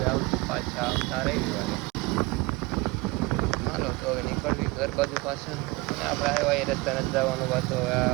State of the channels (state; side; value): quieter; left; 23.5 dB